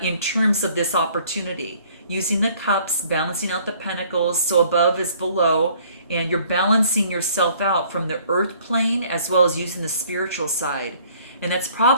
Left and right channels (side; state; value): both; inverted; correlation -0.58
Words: in terms of this opportunity. Using the cups, balancing out the pentacles, so above is below, and you're balancing yourself out from the earth plane as well as using the spiritual side. And that's